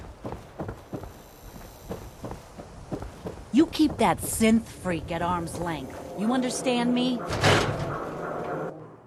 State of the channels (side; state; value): both; identical; correlation 1.00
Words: You keep that synth freak at arm's length. You understand me?